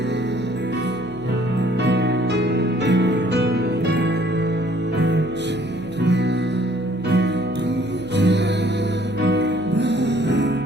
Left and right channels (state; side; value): noise; right; hum, 21 dB below the sound